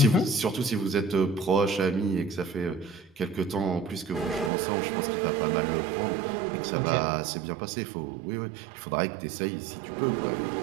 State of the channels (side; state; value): left; drops out; at 4.5 s